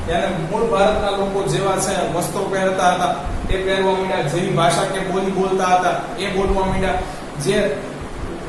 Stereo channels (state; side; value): identical; both; correlation 1.00